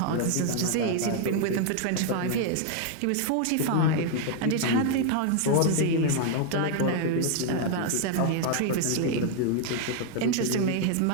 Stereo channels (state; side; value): different; both; correlation 0.00